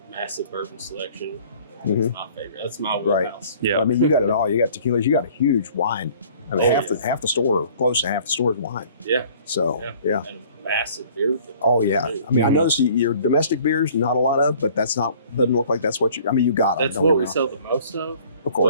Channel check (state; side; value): inverted; both; correlation -0.53